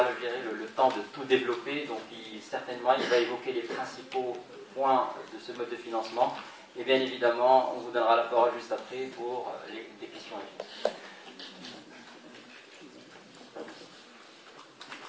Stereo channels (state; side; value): identical; both; correlation 1.00